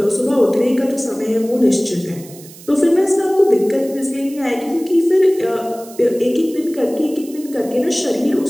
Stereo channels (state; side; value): noise; right; hiss, 20 dB below the sound